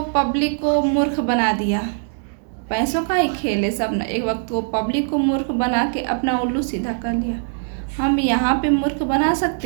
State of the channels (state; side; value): silent; left; digital silence